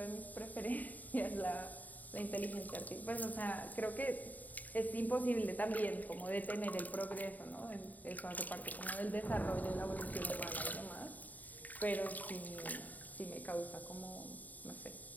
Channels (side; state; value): right; late; 0.080 ms